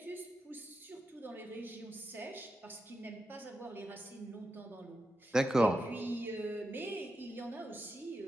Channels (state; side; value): normal; both; correlation 0.88